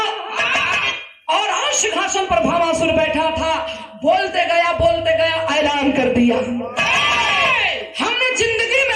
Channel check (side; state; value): both; identical; correlation 1.00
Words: और सिंहासन पर भामासुर बैठा था। बोलते गया ऐलान कर दिया, हमने जिंदगी